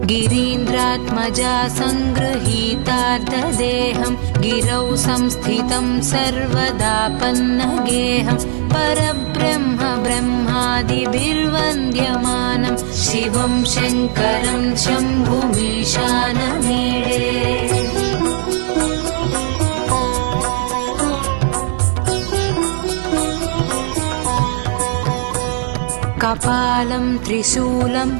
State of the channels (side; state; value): left; silent; 68 dB below the other